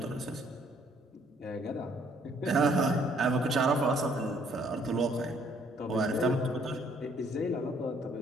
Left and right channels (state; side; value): normal; both; correlation 0.64